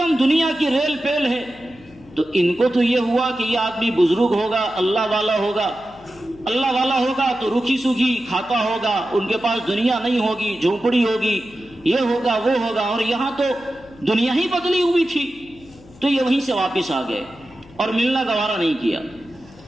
دنیا کی ریل پیل ہے. تو ان کو تو یہ ہوا کہ یہ آدمی بزرگ ہوگا، اللہ والا ہوگا. اللہ والا ہوگا تو روکھی سوکھی کھاتا ہوگا، ان کے پاس دنیا نہیں ہوگی، جھونپڑی ہوگی، یہ ہوگا وہ ہوگا. اور یہاں تو دنیا ہی بدلی ہوئی تھی. تو یہ وہیں سے واپس آ گئے اور ملنا گوارا نہیں کیا.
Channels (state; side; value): noise; left; hum, 24 dB below the sound